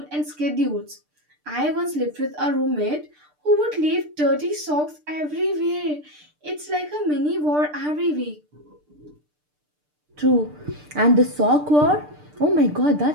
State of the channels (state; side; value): late; left; 6.7 ms